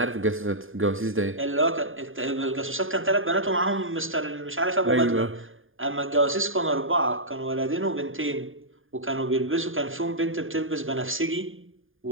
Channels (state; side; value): late; left; 0.59 ms